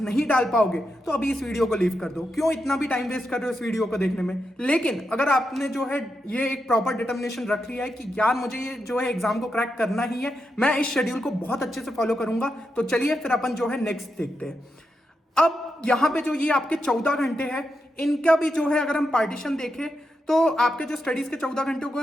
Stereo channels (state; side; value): normal; both; correlation 0.86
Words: नहीं डाल पाओगे, तो अभी इस वीडियो को लीव कर दो। क्यों इतना भी टाइम वेस्ट कर रहे हो इस वीडियो को देखने में? लेकिन अगर आपने जो है ये एक प्रॉपर डिटर्मिनेशन रख लिया है कि यार मुझे ये जो है एग्जाम को क्रैक करना ही है, मैं इस शेड्यूल को बहुत अच्छे से फॉलो करूंगा, तो चलिए फिर अपन जो है नेक्स्ट देखते हैं। अब यहां पे जो ये आपके 14 घंटे हैं इनका भी जो है अगर हम पार्टीशन देखें तो आपके जो स्टडीज के 14 घंटे को